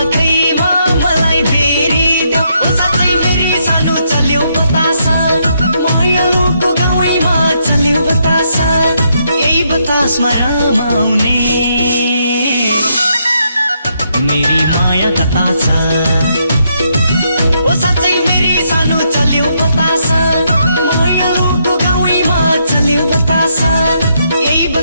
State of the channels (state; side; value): inverted; both; correlation -0.76